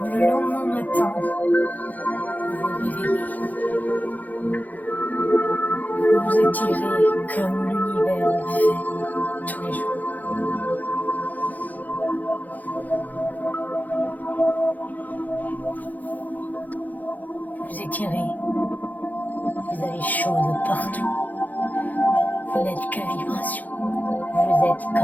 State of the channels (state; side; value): late; right; 0.081 ms